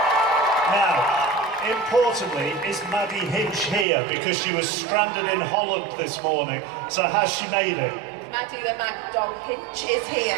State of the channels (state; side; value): drops out; left; at 3.9 s